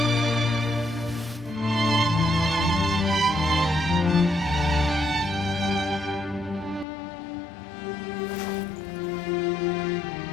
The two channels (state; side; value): drops out; right; at 6.9 s